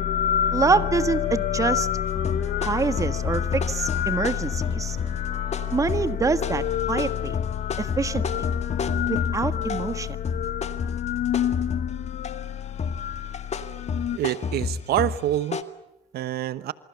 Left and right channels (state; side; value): normal; both; correlation 0.41